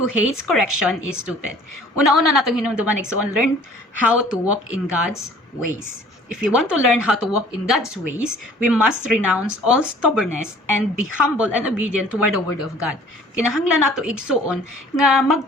correction is stupid. Una-una natong hinumduman igsoon, learn how to walk in God's ways. If we want to learn how to walk in God's ways, we must renounce all stubbornness and be humble and obedient toward the word of God. Kinahanglan nato igsuon nga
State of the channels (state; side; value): normal; both; correlation 0.52